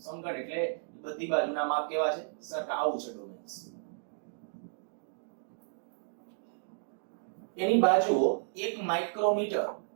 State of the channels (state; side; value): silent; left; digital silence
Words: સમઘન એટલે બધી બાજુના માપ કેવા છે? સરખા. આવું છે ડોમેન્સ. એની બાજુઓ 1 માઇક્રોમીટર,